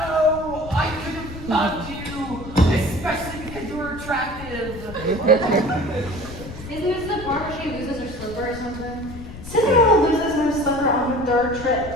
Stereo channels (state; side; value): noise; left; rumble, 13 dB below the sound